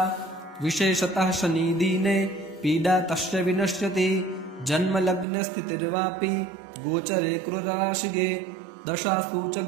विशेषतः शनिदीने पीडा तस्य विनश्यति जन्मलग्नस्थितिर्वापि गोचरे क्रूरराशिगे दशासु च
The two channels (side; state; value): left; drops out; at 5.2 s